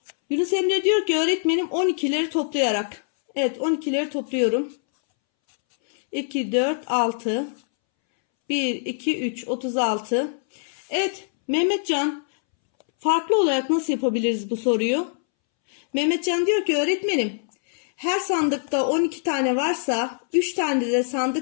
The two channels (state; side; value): silent; right; 63 dB below the other